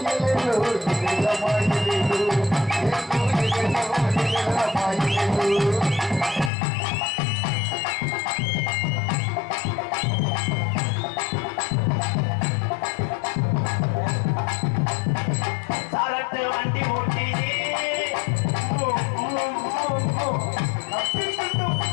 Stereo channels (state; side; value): drops out; right; at 6.5 s